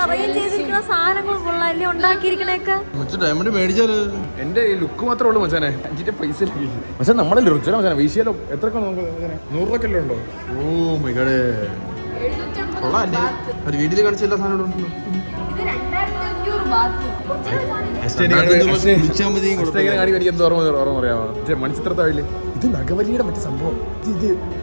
അറേഞ്ച് ചെയ്തിരിക്കുന്ന സാധനങ്ങൾ കൊള്ളാല്ലേ, ഉണ്ടാക്കിയിരിക്കണേക്കെ. ഡയമണ്ട് മേടിച്ചാല് എന്റെ ലുക്ക് മാത്രമേ ഉള്ളൂ മച്ചാനെ. 5 പൈസ പക്ഷെ നമ്മളെ രുചില മച്ചാനെ. വീശിയാലോ എത്രയൊക്കെ നമുക്ക് 100 രൂപ ഉണ്ടോ? ഓ മൈ ഗോഡ്, കൊള്ളാല്ലേ. ഒരു വീട്ടിൽ കാണിച്ച എല്ലാ സാധനവും ഉണ്ടല്ലോ. മണിച്ചിത്രത്താഴില് ഇത് നഗവലിയുടെ മറ്റു സംഭവം. ഇത്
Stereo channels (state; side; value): inverted; both; correlation -1.00